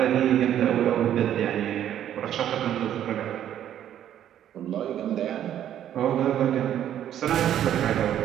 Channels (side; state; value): left; quieter; 10.8 dB